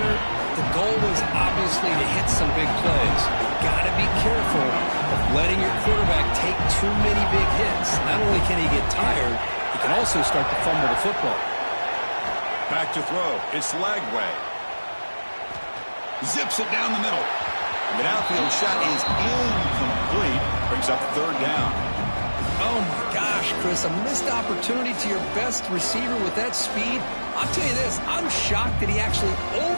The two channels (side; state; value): both; inverted; correlation -1.00